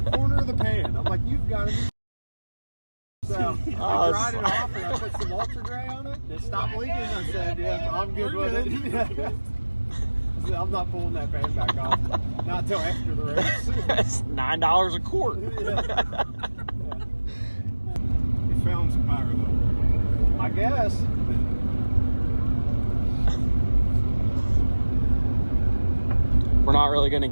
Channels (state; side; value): inverted; both; correlation -1.00